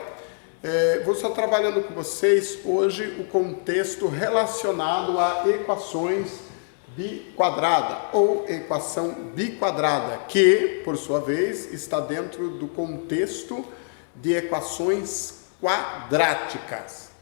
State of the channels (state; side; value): silent; right; 62 dB below the other